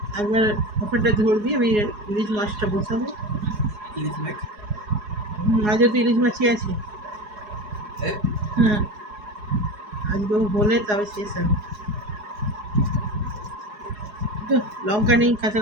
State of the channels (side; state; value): left; late; 4.8 ms